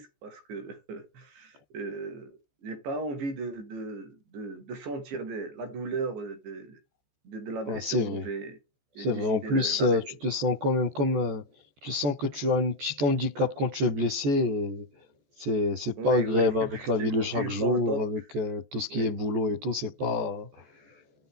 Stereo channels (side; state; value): left; late; 14 ms